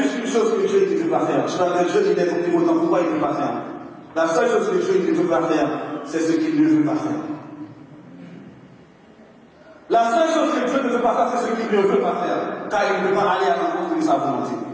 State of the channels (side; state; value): both; identical; correlation 1.00